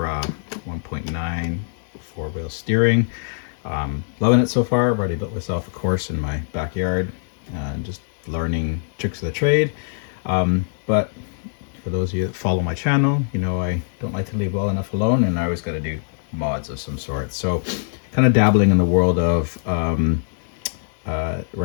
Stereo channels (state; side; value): silent; right; digital silence